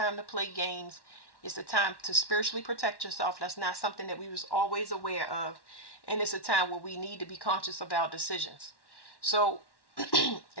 to play games. It's a time to spiritually protect yourself. That's not something that we was always aware of. And it's a time where we need to be conscious of our decisions. So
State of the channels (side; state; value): right; late; 1.1 ms